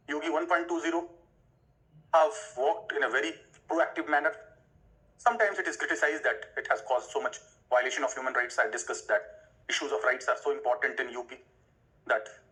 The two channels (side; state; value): both; identical; correlation 1.00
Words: Yogi 1.20 have worked in a very proactive manner. Sometimes it is criticized that it has caused so much violation of human rights. I discussed that issues of rights are so important in UP that